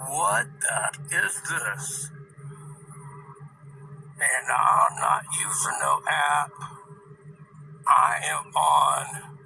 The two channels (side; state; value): both; identical; correlation 1.00